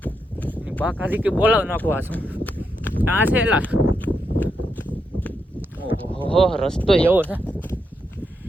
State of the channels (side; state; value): both; normal; correlation 0.82